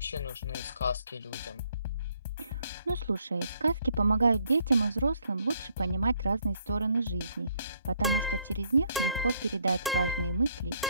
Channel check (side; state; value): both; inverted; correlation -0.69